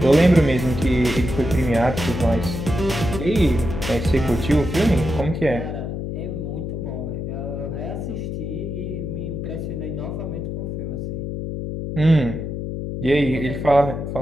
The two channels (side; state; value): left; noise; hum, 5 dB below the sound